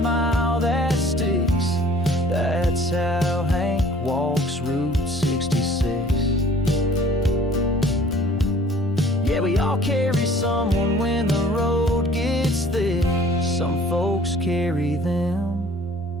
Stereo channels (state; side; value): normal; both; correlation 0.53